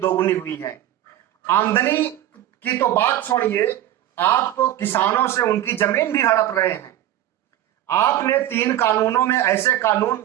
हुई है। आमदनी की तो बात छोड़िए, आप तो किसानों से उनकी जमीन भी हड़प रहे हैं। आपने 3 कानूनों में ऐसे कानून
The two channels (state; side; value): quieter; left; 12.8 dB